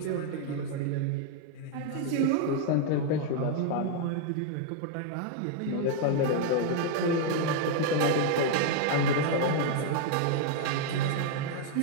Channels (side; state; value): both; different; correlation 0.00